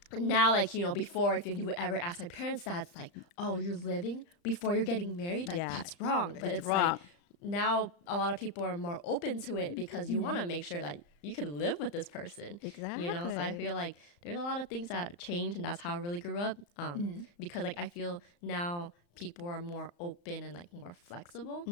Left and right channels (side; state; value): right; late; 35 ms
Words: now, like, before, if you would ever ask my parents that, it's like, oh, you're living before you're getting married? Like, that's wrong. But it's wrong. like, now a lot of people are more open to it because you want to make sure that you can live with this person. Exactly. So I feel like there's a lot of things that change, and that's how I really grew up. Because, like, I feel now people are more open and like more flexible.